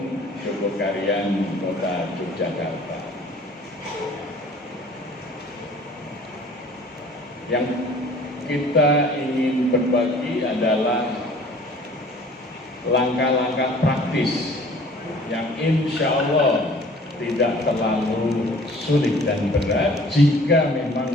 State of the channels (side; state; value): both; normal; correlation 0.50